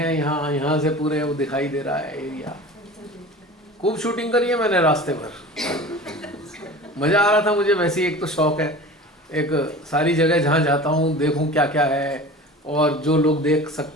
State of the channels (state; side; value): normal; both; correlation 0.37